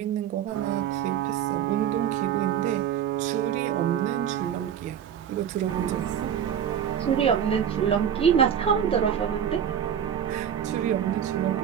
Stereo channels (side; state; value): left; quieter; 9.1 dB